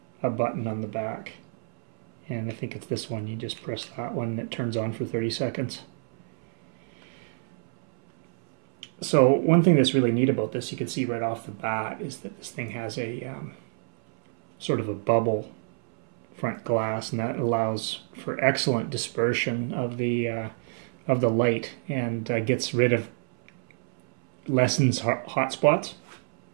a button on the back. And I think it's this one. You just press that one and it turns on for 30 seconds. So one thing that's really neat about this, you can see right off the bat, is that this thing has a sort of a bubble front glass, and that allows for excellent dispersion of the light, and gets rid of, lessens hot spots.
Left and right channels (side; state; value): left; silent; 60 dB below the other